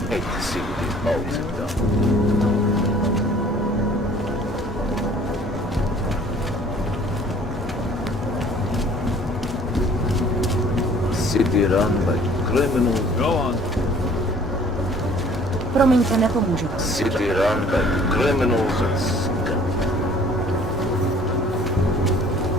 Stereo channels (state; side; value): normal; both; correlation 0.53